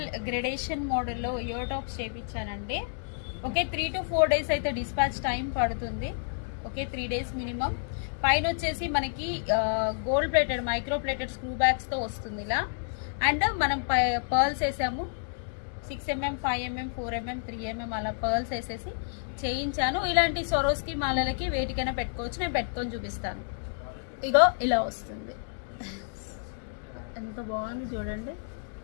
గ్రెడేషన్ మోడల్లో ఇయర్ టాప్స్ చేయించానండి. ఓకే, 3 to 4 days అయితే డిస్పాచ్ టైం పడుతుంది. Okay, 3 days minimum. పైన వచ్చేసి మనకి gold plated micro plated screw బ్యాగ్స్తో వస్తుంది ఇలా. అండ్ మనం పర్ల్స్ వేసాము, 6mm, 5mm, 4mm, 3mm అలా పర్ల్స్ వేసేసి చేయించాను. ఇలాంటి స్వరోస్కి మాలలకి వేటికైనా పెట్టుకోవచ్చు. నేను పెట్టుకొని చూపిస్తాను. ఇగో ఇలా వస్తుంది, ఎంత బాగుంది చూడండి,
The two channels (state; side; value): silent; right; digital silence